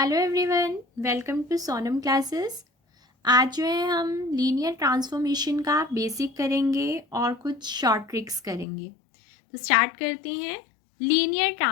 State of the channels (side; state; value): right; drops out; at 8.7 s